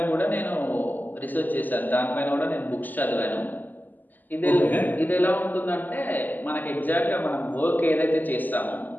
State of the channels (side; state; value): right; late; 0.085 ms